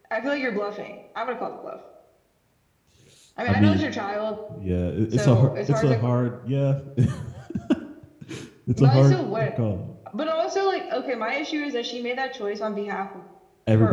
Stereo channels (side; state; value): both; identical; correlation 1.00